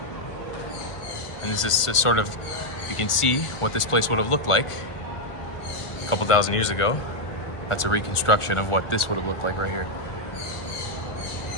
And this is sort of, you can see what this place would have looked like a couple thousand years ago. That's a reconstruction of what this would have looked like right here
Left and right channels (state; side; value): late; right; 1.4 ms